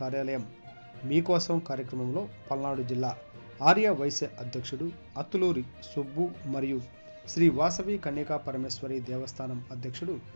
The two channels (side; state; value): both; inverted; correlation -1.00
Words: మీకోసం కార్యక్రమంలో పల్నాడు జిల్లా ఆర్య వైశ్య అధ్యక్షుడు అత్తులూరి సుబ్బు మరియు శ్రీ వాసవి కన్యకా పరమేశ్వరి దేవస్థానం అధ్యక్షుడు